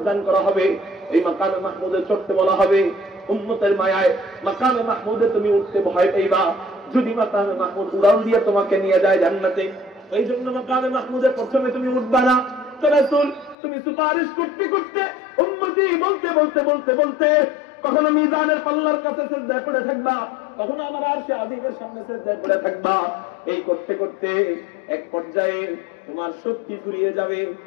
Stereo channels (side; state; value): right; drops out; at 13.6 s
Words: দান করা হবে এই মাকামে মাহমুদে চড়তে বলা হবে উম্মতের মায়ায় মাকামে মাহমুদে তুমি উঠতে ভয় পাইবা যদি মাকামে মাহমুদ উড়ান দিয়ে তোমাকে নিয়ে যায় জান্নাতে এই জন্য মাকামে মাহমুদে প্রথমে তুমি উঠবা না তো রাসূল তুমি সুপারিশ করতে করতে উম্মতি বলতে বলতে বলতে বলতে কখনো মিজানের পাল্লার কাছে সিজদায় পড়ে থাকবা কখনো আমার আরশে আজিমের সামনে সিজদায় পড়ে থাকবা এই করতে করতে এক পর্যায়ে তোমার শক্তি ফুরিয়ে যাবে